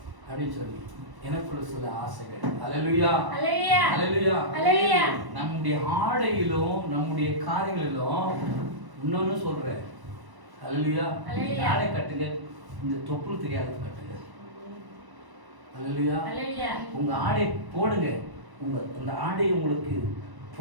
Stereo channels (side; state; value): left; late; 1.0 ms